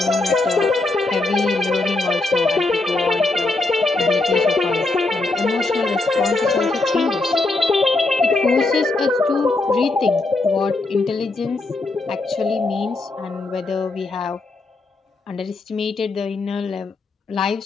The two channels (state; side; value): quieter; right; 3.2 dB